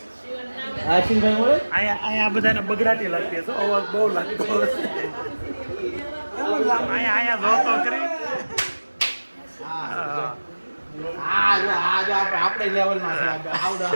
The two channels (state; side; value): inverted; both; correlation -1.00